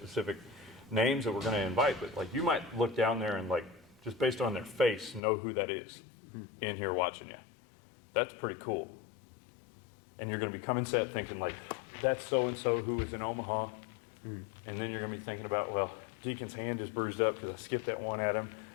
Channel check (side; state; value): right; drops out; at 5.2 s